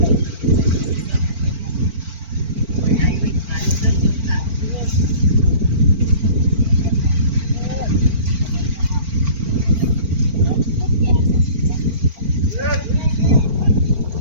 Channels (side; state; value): left; late; 4.4 ms